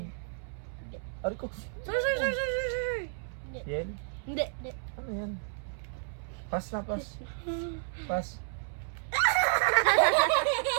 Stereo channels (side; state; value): left; silent; 57 dB below the other